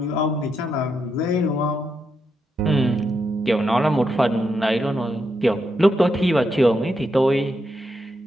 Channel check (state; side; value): normal; both; correlation 0.82